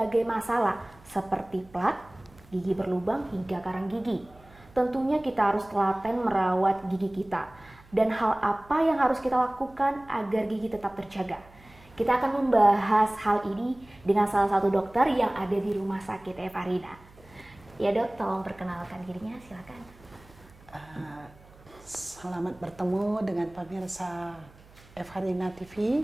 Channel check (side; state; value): right; noise; hum, 25 dB below the sound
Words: masalah seperti plak, gigi berlubang hingga karang gigi. Tentunya kita harus telaten merawat gigi kita. Dan hal apa yang harus kita lakukan agar gigi tetap terjaga? Kita akan membahas hal ini dengan salah satu dokter yang ada di Rumah Sakit Evarina. Ya dok, tolong perkenalkan dirinya, silakan. Selamat bertemu dengan pemirsa Evarina TV.